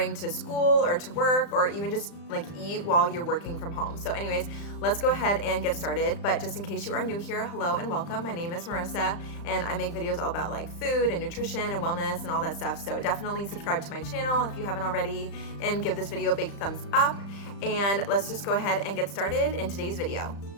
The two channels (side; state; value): right; late; 35 ms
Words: to school or to work, or even just like eat while you're working from home. So anyways, let's go ahead and get started. But just in case you are new here, hello and welcome. My name is Marissa, and I make videos all about like food and nutrition and wellness and all that stuff. So definitely subscribe to my channel if you haven't already, and give this video a big thumbs up. And let's just go ahead and get started in today's video.